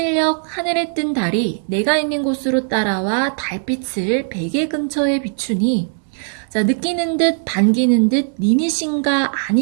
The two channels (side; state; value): left; silent; 67 dB below the other